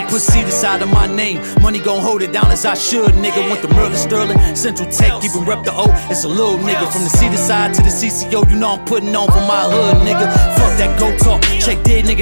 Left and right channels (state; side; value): inverted; both; correlation -1.00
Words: Put CEDARSIDE on my name, money gon' hold it down as I should, nigga. Went to Merlin, Sterling, Central Tech, even rep the O. It's a little nigga from the CEDARSIDE to the CCO. You know I'm putting on for my hood, nigga. Fuck that go talk, check dead,